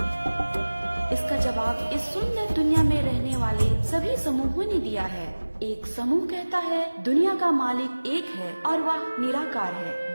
इसका जवाब इस सुंदर दुनिया में रहने वाले सभी समूहों ने दिया है। एक समूह कहता है दुनिया का मालिक एक है और वह निराकार है।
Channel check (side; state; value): both; inverted; correlation -1.00